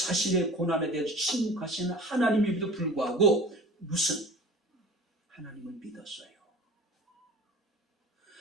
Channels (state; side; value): normal; both; correlation 0.41